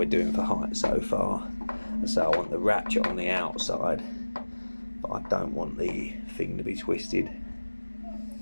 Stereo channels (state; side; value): inverted; both; correlation -1.00